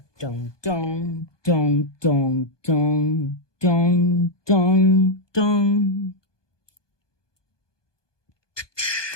dun, dun, dun, dun, dun, dun, dun, dun.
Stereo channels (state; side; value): late; right; 1.2 ms